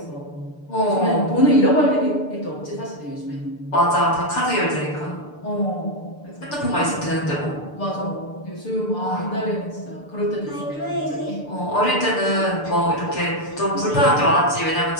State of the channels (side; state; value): right; late; 6.8 ms